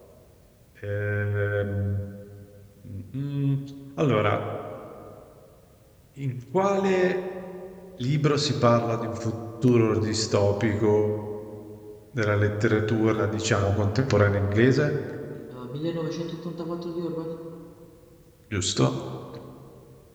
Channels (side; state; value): both; identical; correlation 1.00